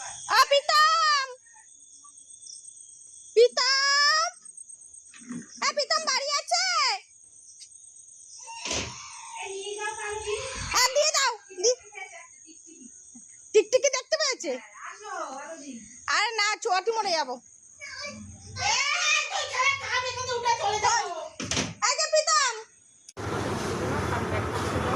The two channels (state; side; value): identical; both; correlation 1.00